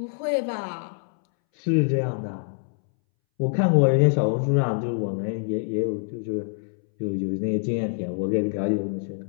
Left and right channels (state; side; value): silent; right; 62 dB below the other